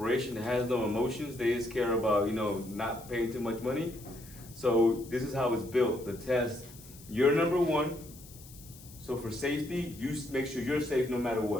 that has no emotions. They just care about, not paying too much money. So this is how it's built. The test, you're number 1. So for safety, you make sure you're safe no matter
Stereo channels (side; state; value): left; noise; hiss, 19 dB below the sound